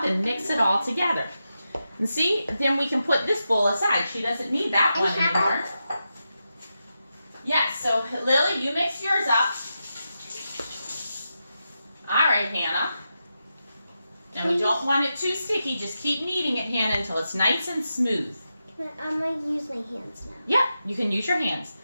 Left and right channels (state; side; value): inverted; both; correlation -0.88